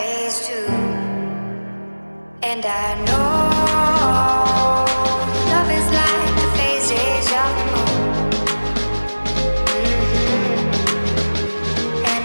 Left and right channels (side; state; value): both; inverted; correlation -1.00